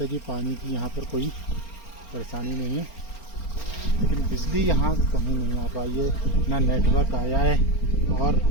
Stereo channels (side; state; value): right; late; 4.4 ms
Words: है कि पानी की यहाँ पर कोई परेशानी नहीं है, लेकिन बिजली यहाँ कहीं नहीं आ पाई है, ना नेटवर्क आया है। और